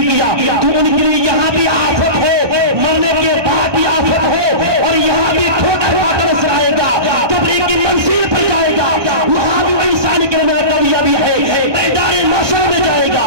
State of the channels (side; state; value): left; late; 1.2 ms